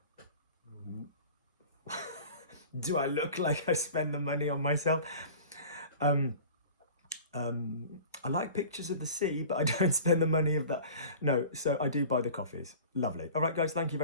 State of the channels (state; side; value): inverted; both; correlation -0.41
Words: Do I look like I spend the money on myself? I like pictures of the sea, but I don't spend the money of that. No, so I do buy the coffees. Lovely. All right, guys, thank you